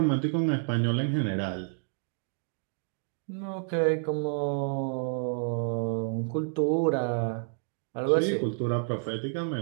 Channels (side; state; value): left; silent; 58 dB below the other